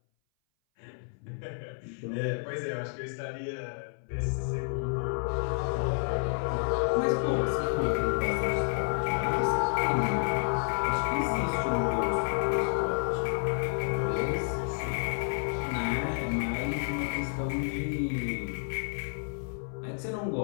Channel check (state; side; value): silent; right; 58 dB below the other